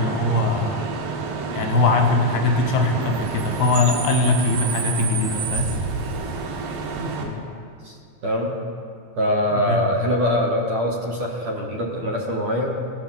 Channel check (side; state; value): left; late; 11 ms